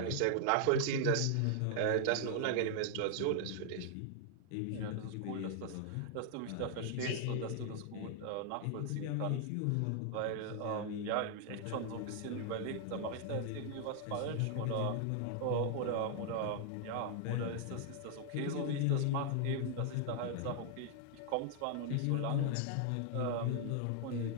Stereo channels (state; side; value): different; both; correlation 0.00